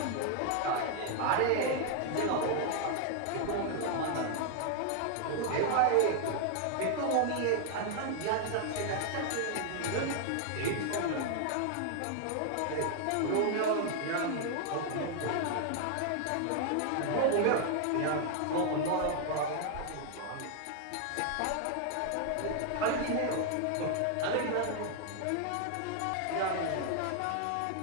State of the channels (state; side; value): different; both; correlation 0.00